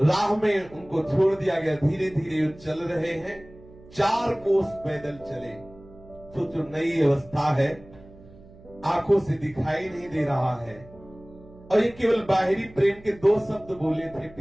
राह में उनको छोड़ दिया गया। धीरे धीरे चल रहे हैं, 4 कोस पैदल चले। सोचो नई अवस्था है, आंखों से दिखाई नहीं दे रहा है, और ये केवल बाहरी प्रेम के 2 शब्द बोले थे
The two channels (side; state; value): right; noise; hum, 22 dB below the sound